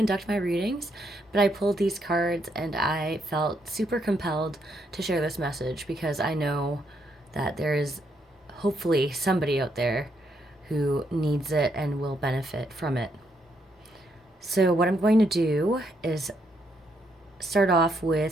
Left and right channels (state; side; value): normal; both; correlation 0.76